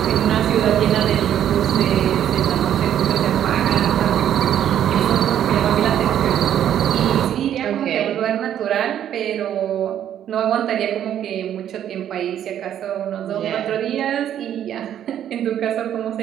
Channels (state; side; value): quieter; left; 10.4 dB